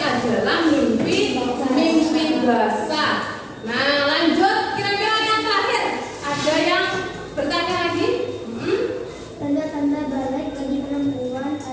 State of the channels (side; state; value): both; identical; correlation 1.00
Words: adalah mimpi basah. Nah, lanjut, kira-kira yang terakhir ada yang bertanya lagi? Tanda-tanda balik bagi perempuan